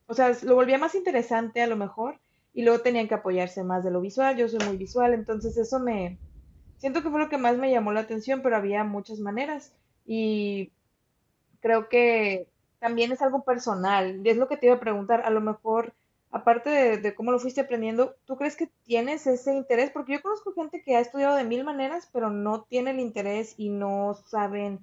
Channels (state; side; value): identical; both; correlation 1.00